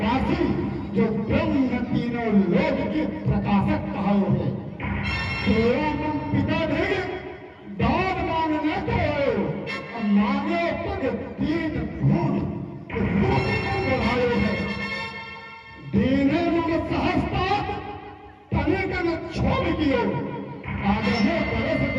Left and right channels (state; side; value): identical; both; correlation 1.00